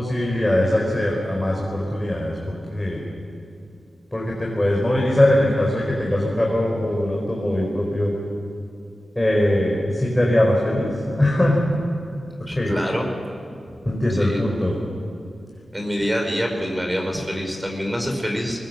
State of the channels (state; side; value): normal; both; correlation 0.95